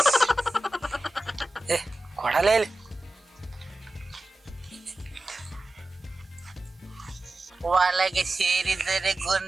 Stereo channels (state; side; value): normal; both; correlation 0.95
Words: ಏ ಕೊಡಲೇ ಇಲ್ಲಿ. ಒಳಗೆ ಸೇರಿದರೆ